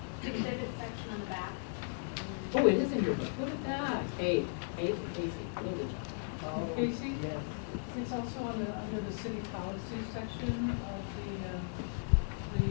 the exhibit section on the back? Oh, it is in your book, look at that, Kate and Casey, really good job. Casey? It's also on the, under the city policy section of the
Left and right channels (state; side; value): silent; right; 54 dB below the other